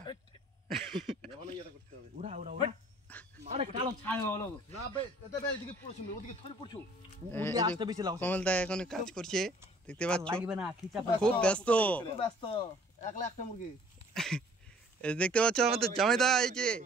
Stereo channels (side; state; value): both; normal; correlation 0.55